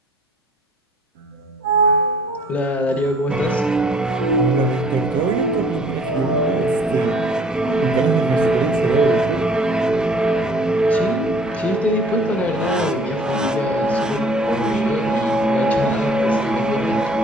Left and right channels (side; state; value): both; normal; correlation 0.55